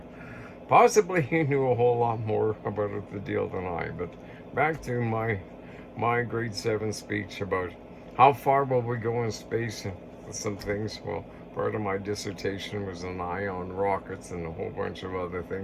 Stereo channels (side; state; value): both; identical; correlation 1.00